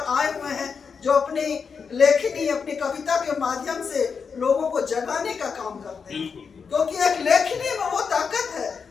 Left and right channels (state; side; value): quieter; right; 5.8 dB